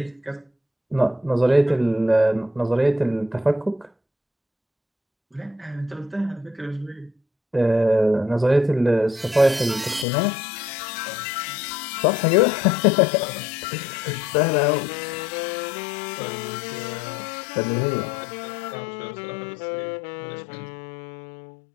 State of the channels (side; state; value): right; drops out; at 10.1 s